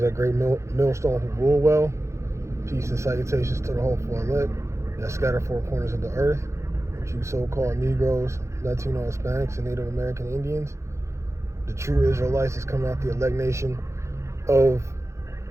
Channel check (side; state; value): left; late; 0.14 ms